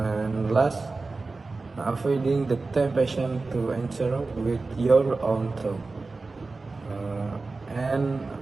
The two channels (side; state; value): left; quieter; 3.7 dB